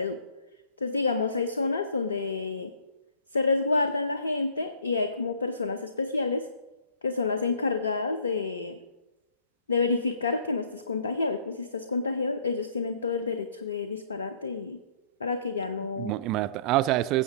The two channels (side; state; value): both; inverted; correlation -0.55